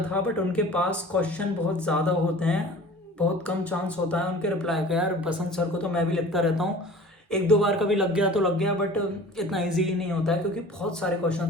था, बट उनके पास क्वेश्चन बहुत ज़्यादा होते हैं, बहुत कम चांस होता है उनके रिप्लाई का। यार बसंत सर को तो मैं भी लिखता रहता हूँ, 1-2 बार कभी लग गया तो लग गया, बट इतना ईजी नहीं होता है क्योंकि बहुत सारे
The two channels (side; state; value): both; normal; correlation 0.43